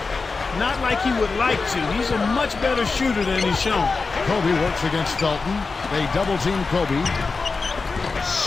Not like he would like to. He's a much better shooter than he's shown. Kobe works against Felton. They double team Kobe.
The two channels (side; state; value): right; quieter; 4.3 dB